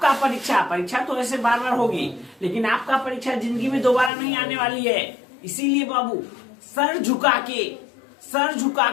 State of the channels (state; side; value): drops out; right; at 4.1 s